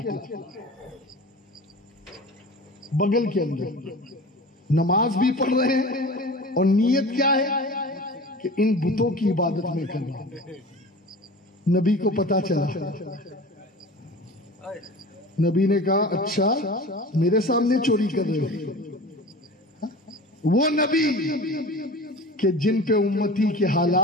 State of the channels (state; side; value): normal; both; correlation 0.37